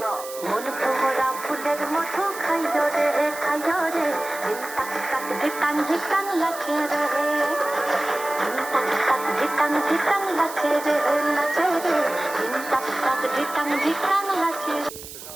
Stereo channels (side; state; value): right; noise; hiss, 13 dB below the sound